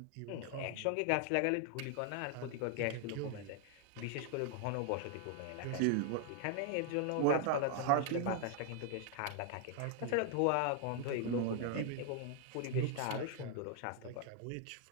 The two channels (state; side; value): different; both; correlation 0.00